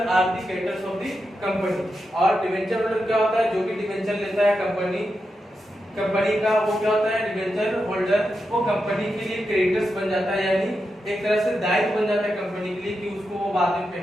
are the creditors of the company। और डिवेंचर होल्डर क्या होता है, जो भी डिवेंचर लेता है कंपनी का वो क्या होता है, डिवेंचर होल्डर वो कंपनी के लिए क्रेडिटर्स बन जाता है, यानी एक तरह से दायित्व बन जाता है कंपनी के लिए कि उसको वो बाद में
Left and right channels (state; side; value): normal; both; correlation 0.87